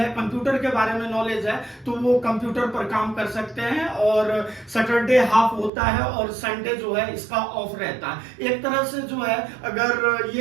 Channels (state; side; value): drops out; left; at 5.7 s